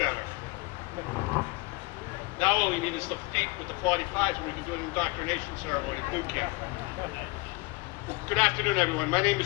Now all we need is the feet with the 45s and we can do an indoctrination ceremony at boot camp. Good afternoon, everyone. My name is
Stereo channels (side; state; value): right; quieter; 24.4 dB